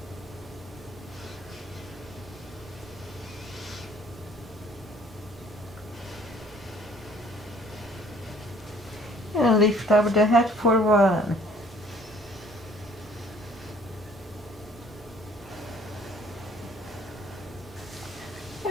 And lift up the head for 1.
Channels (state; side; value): normal; both; correlation 0.57